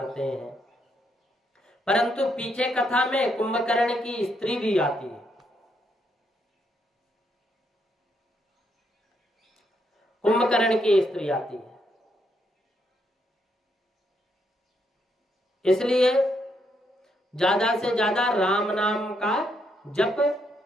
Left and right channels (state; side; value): normal; both; correlation 0.76